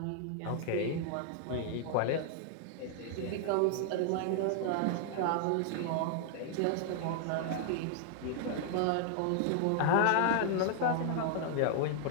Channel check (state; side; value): different; both; correlation 0.00